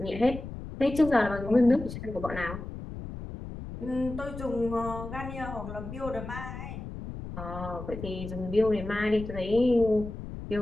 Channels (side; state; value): left; noise; rumble, 9 dB below the sound